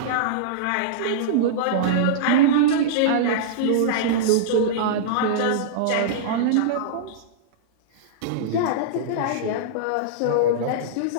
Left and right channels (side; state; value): both; different; correlation -0.03